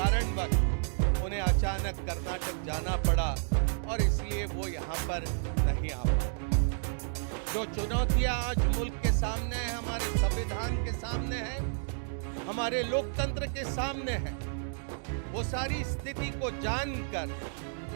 उन्हें अचानक कर्नाटक जाना पड़ा और इसलिए वो यहाँ पर नहीं आ पाए। जो चुनौतियां आज मुल्क के सामने हैं, हमारे संविधान के सामने हैं, हमारे लोकतंत्र के सामने हैं, वो सारी स्थिति को जानकर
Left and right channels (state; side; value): silent; left; digital silence